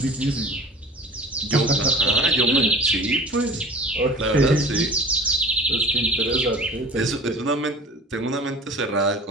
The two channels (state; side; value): normal; both; correlation 0.40